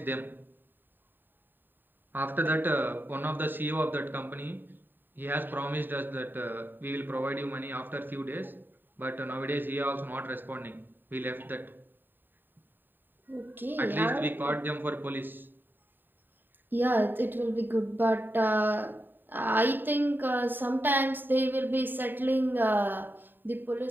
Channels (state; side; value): late; left; 0.093 ms